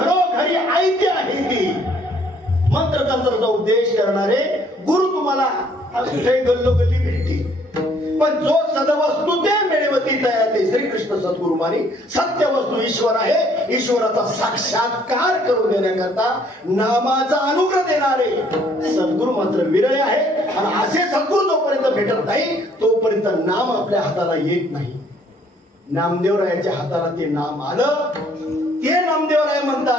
ऐते आहे ती. मंत्र तंत्राचा उपदेश करणारे गुरु तुम्हाला गल्लोगल्ली भेटतील, पण जो सदवस्तू ते मिळवती तया ते श्रीकृष्ण सद्गुरु मानी. सत्य वस्तू ईश्वर आहे. ईश्वराचा साक्षात्कार करून देण्याकरता नामाचा अनुग्रह देणारे सद्गुरु मात्र विरळे आहे. आणि असे सद्गुरु जोपर्यंत भेटत नाही तोपर्यंत नाम आपल्या हाताला येत नाही. नामदेवरायाच्या हाताला ते नाम आलं, ते नामदेवराय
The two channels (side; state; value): both; normal; correlation 0.63